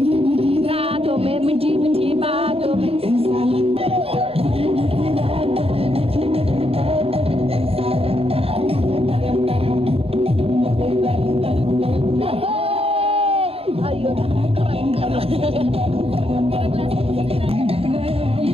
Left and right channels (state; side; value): late; left; 0.28 ms